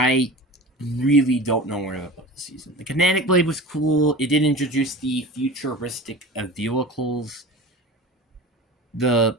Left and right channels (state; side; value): normal; both; correlation 0.34